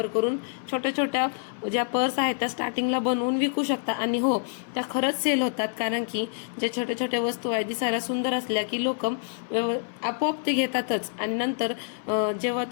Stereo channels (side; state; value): right; silent; 60 dB below the other